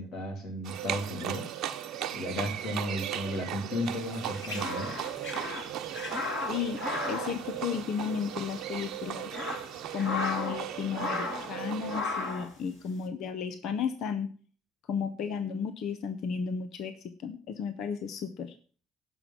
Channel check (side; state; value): both; normal; correlation 0.46